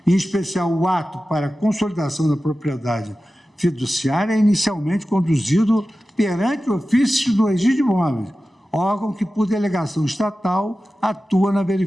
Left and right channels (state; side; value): normal; both; correlation 0.94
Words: em especial o ato para a consolidação da propriedade fiduciária, é inicialmente conduzido perante o ofício do registro de imóveis, órgão que, por delegação estatal, atua na